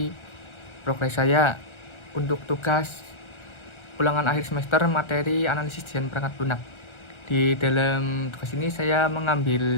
progres saya untuk tugas ulangan akhir semester materi analisis desain perangkat lunak. Di dalam tugas ini saya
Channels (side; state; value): right; late; 1.4 ms